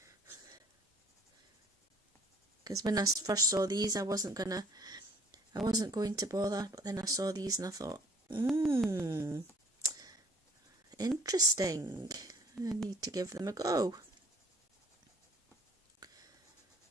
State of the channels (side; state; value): both; normal; correlation 0.58